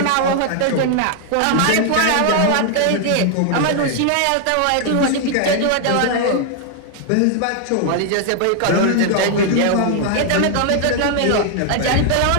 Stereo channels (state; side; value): different; both; correlation 0.00